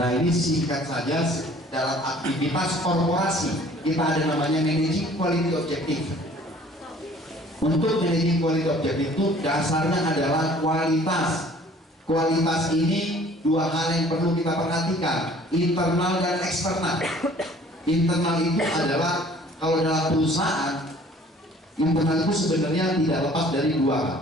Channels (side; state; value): both; normal; correlation 0.53